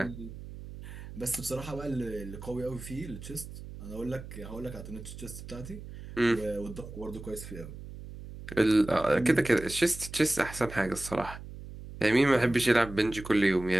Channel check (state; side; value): noise; right; hum, 13 dB below the sound